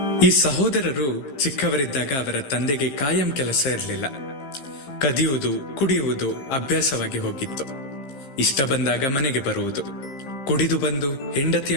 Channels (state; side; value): late; right; 15 ms